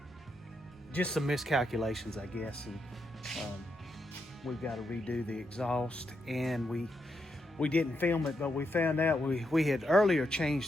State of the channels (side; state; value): both; normal; correlation 0.82